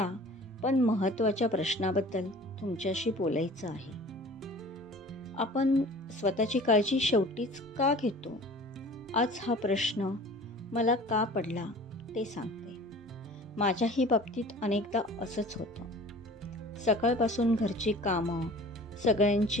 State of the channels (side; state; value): both; normal; correlation 0.44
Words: पण महत्त्वाच्या प्रश्नाबद्दल तुमच्याशी बोलायचं आहे. आपण स्वतःची काळजी शेवटीच का घेतो? आज हा प्रश्न मला का पडला ते सांगते. माझ्याही बाबतीत अनेकदा असंच होतं. सकाळपासून घरची कामं,